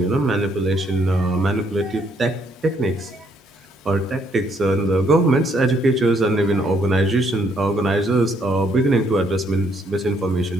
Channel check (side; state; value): both; normal; correlation 0.70